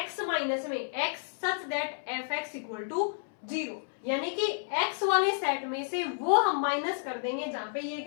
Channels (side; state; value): right; silent; 57 dB below the other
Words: minus में x such that f x equal to zero, यानी कि x वाले सेट में से वो हम माइनस कर देंगे जहां पे ये